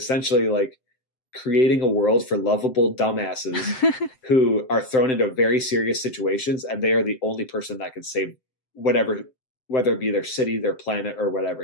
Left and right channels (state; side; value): late; right; 7.8 ms